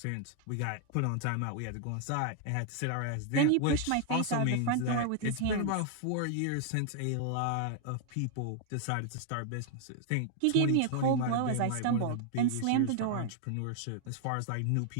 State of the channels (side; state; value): both; different; correlation 0.00